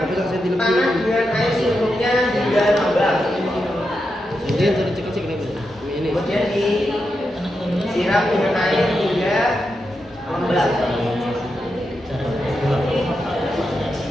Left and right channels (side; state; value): both; normal; correlation 0.87